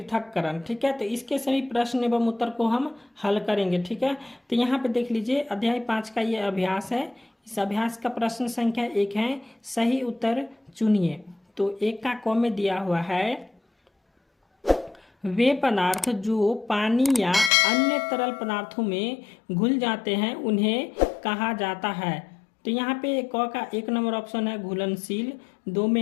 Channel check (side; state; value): right; drops out; at 17.5 s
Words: ठीक है, तो इसके सभी प्रश्न एवं उत्तर को हम हल करेंगे। ठीक है, तो यहाँ पे देख लीजिए अध्याय 5 का ये अभ्यास है। इस अभ्यास का प्रश्न संख्या 1 है, सही उत्तर चुनिए। तो 1 का क में दिया हुआ है, वे पदार्थ जो पानी या अन्य तरल पदार्थों में घुल जाते हैं उन्हें कहा जाता है। तो यहाँ पे क का 1 नंबर ऑप्शन है घुलनशील, 2